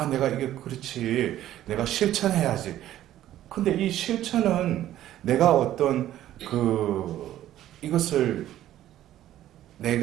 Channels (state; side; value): quieter; left; 12.9 dB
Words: 내가 이게 그렇지. 내가 실천해야지. 근데 이 실천은 내가 어떤 이것을